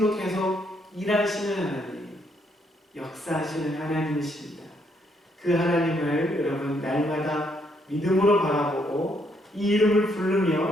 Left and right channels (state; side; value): normal; both; correlation 0.72